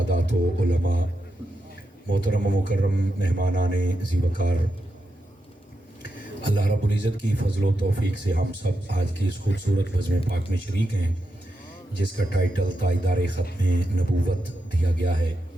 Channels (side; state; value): both; normal; correlation 0.87